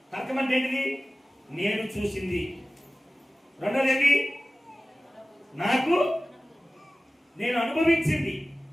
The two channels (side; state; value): both; normal; correlation 0.96